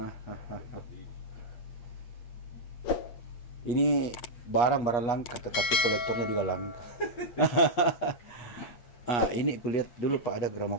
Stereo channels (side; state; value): right; late; 8.6 ms